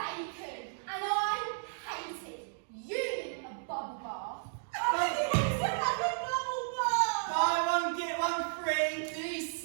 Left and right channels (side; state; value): left; silent; digital silence